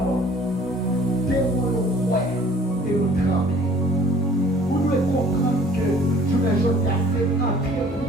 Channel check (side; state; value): both; normal; correlation 0.53